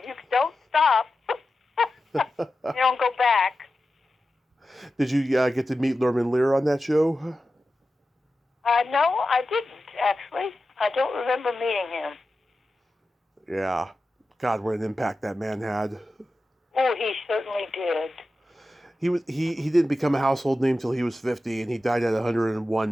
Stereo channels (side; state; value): both; normal; correlation 0.93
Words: don't stop. You don't go back. Did you get to meet Norman Lear on that show? No, I didn't, actually. I don't remember meeting him. Yeah. God, what an impact that man had. Oh, he certainly did. He didn't become a household name till he was 50, and he died at